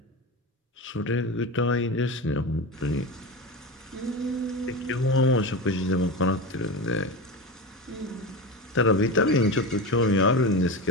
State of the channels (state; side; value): normal; both; correlation 0.23